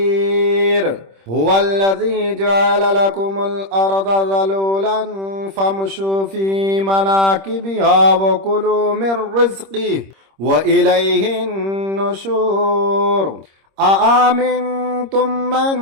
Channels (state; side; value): late; left; 26 ms